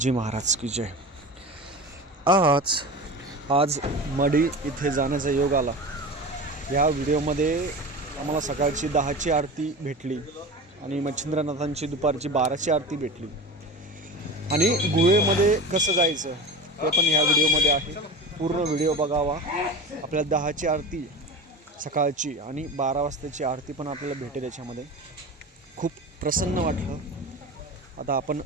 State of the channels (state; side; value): normal; both; correlation 0.30